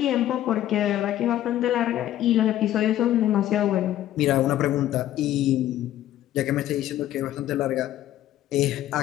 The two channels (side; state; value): right; quieter; 12.9 dB